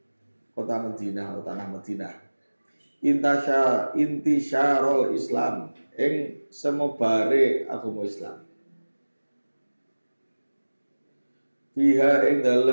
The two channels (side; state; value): both; inverted; correlation -1.00